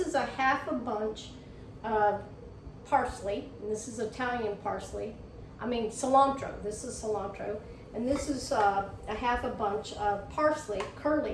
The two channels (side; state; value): both; identical; correlation 1.00